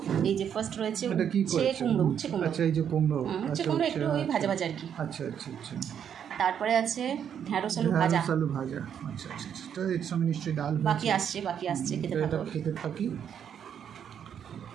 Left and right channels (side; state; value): left; quieter; 8.6 dB